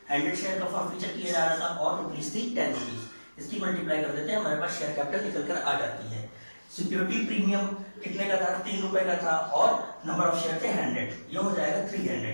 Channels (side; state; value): both; inverted; correlation -1.00